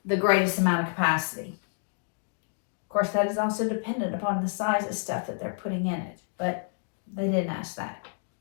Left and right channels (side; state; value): right; silent; digital silence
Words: the greatest amount of capacity. Of course, that is also dependent upon the size of stuff that they're putting in it, but they didn't ask that.